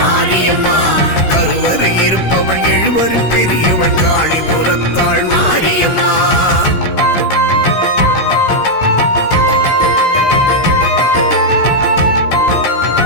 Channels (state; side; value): late; right; 16 ms